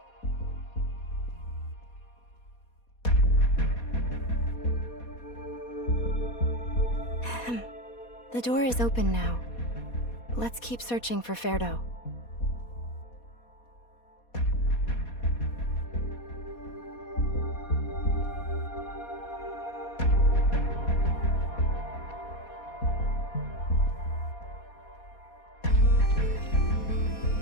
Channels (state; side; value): late; right; 4.2 ms